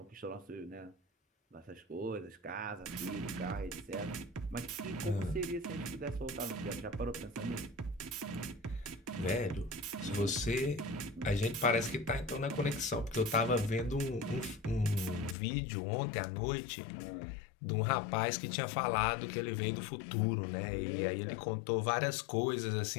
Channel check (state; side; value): drops out; right; at 15.4 s